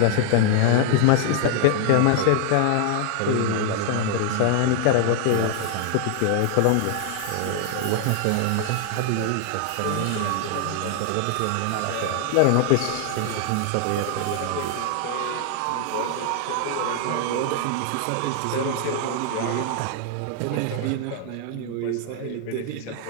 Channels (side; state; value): both; different; correlation 0.00